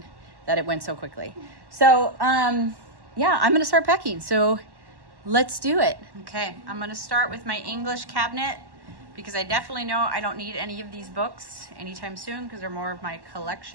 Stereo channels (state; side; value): late; left; 1.1 ms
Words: that it went so quickly. So yeah, I'm gonna start packing. So let's do it. Okay, I'm gonna start with my English cabinet because I definitely know I don't need any of these books anytime soon because they're more of my